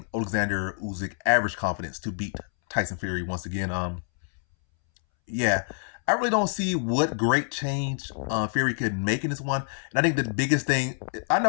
Oleksandr Usyk average confidence to beat Tyson Fury once again. Yeah, I really don't see what great change Fury could make in this one. And I think the biggest thing, I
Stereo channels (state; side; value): silent; right; 60 dB below the other